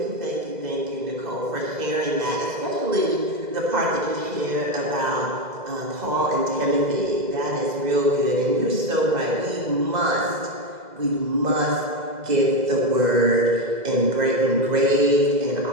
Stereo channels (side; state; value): left; late; 2.0 ms